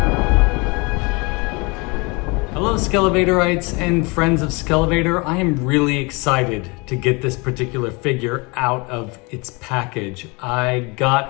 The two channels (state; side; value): quieter; right; 28.1 dB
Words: Hello Skele Vaderites and friends of Skele Vader. I am really excited to get this particular figure out of its package. I